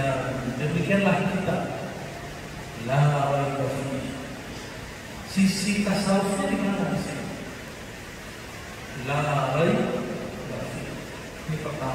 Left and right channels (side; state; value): both; identical; correlation 1.00